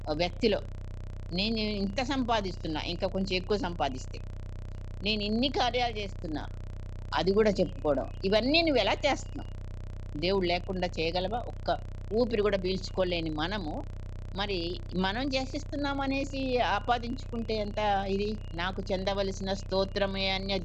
వ్యక్తిలో. నేను ఇంత సంపాదిస్తున్నా, ఇంకా కొంచెం ఎక్కువ సంపాదిస్తే. నేను ఇన్ని కార్యాలు చేస్తున్నా. అది కూడా చెప్పుకోవడం. ఇవన్నీ నువ్వెలా చేస్తున్నావు? దేవుడు లేకుండా చేయగలవా? ఒక్క ఊపిరి కూడా పీల్చుకోలేని మనము, మరి మనం చేసిస్తున్నామనేసి ఆపాదించుకుంటే ఎంత ఇది? నాకు చెందవలసిన స్తోత్రమే అన్య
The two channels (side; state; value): both; identical; correlation 1.00